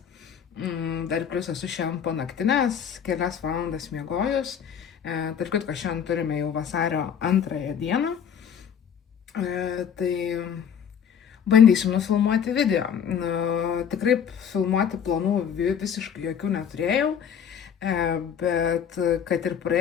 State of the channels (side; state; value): right; quieter; 8.0 dB